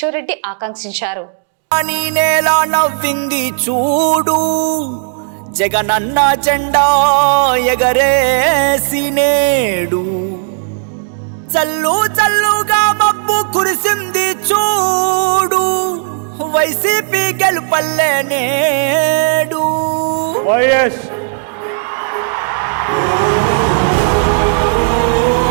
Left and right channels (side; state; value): left; silent; digital silence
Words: రెడ్డి ఆకాంక్షించారు. నవ్వింది చూడు, జగనన్న జెండా ఎగరేసి నేడు, చల్లు చల్లుగా మబ్బు కురిసింది చూడు, వైసీపీ గెలుపల్లే నేడు. వైఎస్